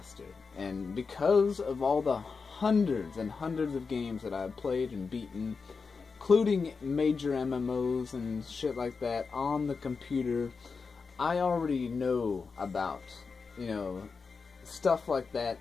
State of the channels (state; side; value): quieter; right; 4.9 dB